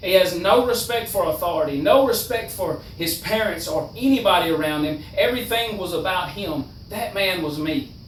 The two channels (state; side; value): identical; both; correlation 1.00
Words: He has no respect for authority, no respect for his parents or anybody around him. Everything was about him. That man was me.